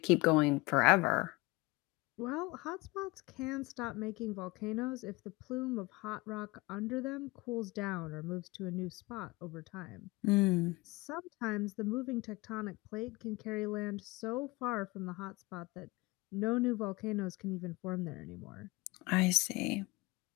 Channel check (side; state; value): right; quieter; 22.7 dB